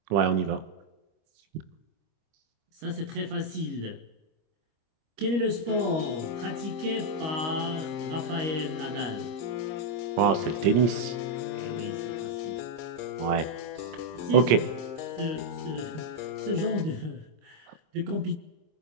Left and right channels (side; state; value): left; late; 25 ms